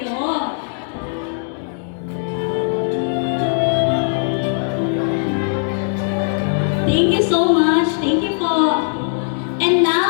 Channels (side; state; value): right; silent; digital silence